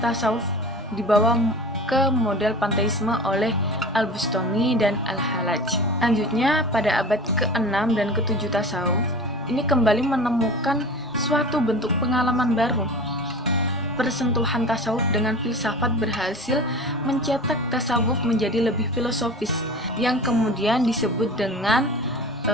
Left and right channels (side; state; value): both; normal; correlation 0.36